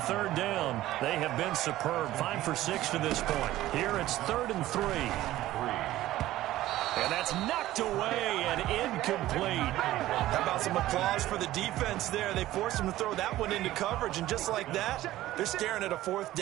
3rd down. They have been superb. 5 for 6 to this point. Here it's 3rd and 3. And that's knocked away and incomplete. How about some applause for the defense there? They forced him to throw that one into coverage, and just like that, they're staring at a 4th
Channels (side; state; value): left; quieter; 15.2 dB